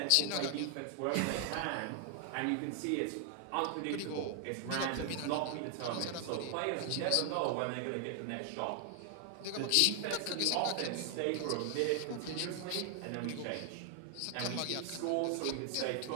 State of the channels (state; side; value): different; both; correlation 0.00